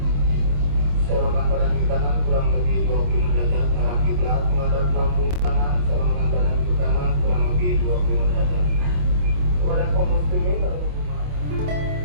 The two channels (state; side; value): late; left; 28 ms